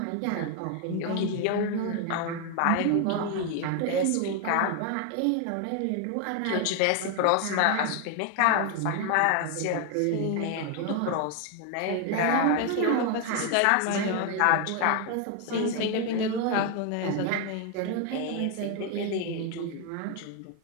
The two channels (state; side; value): different; both; correlation 0.01